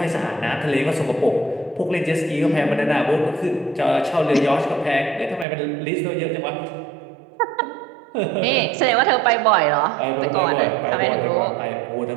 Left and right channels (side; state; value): left; drops out; at 5.5 s